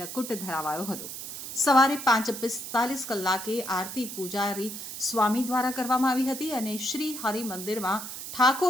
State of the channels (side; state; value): right; noise; hiss, 8 dB below the sound